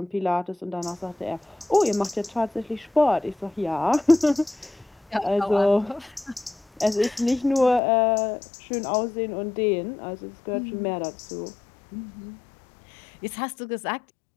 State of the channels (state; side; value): drops out; right; at 7.8 s